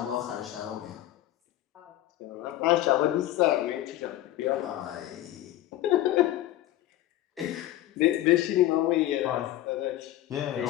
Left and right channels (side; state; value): right; quieter; 14.2 dB